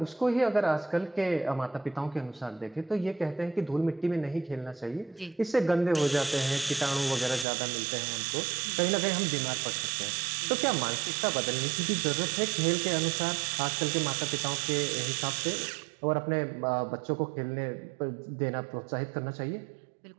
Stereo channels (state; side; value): drops out; left; at 7.5 s